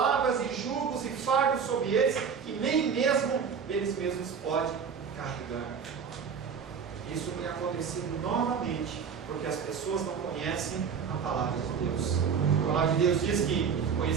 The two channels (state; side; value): quieter; left; 6.6 dB